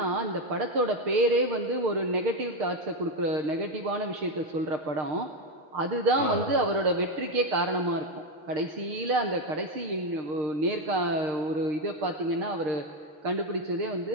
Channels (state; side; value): late; left; 6.6 ms